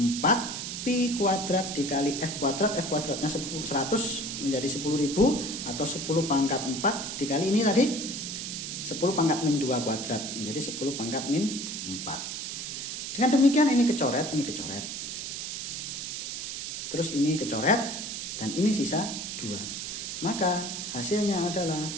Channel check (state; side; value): noise; right; hiss, 5 dB below the sound